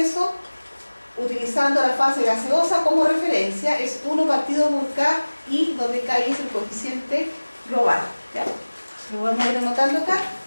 utilizando la fase gaseosa como referencia, es 1 partido por K, y donde K es el coeficiente global. ¿Ya? Lo vamos a ir anotando acá.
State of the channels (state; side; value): inverted; both; correlation -1.00